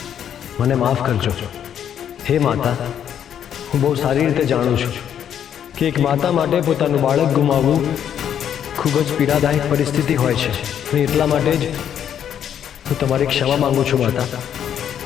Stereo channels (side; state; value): right; quieter; 9.3 dB